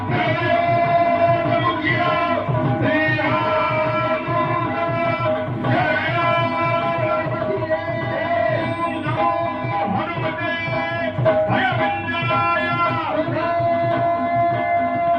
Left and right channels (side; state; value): both; identical; correlation 1.00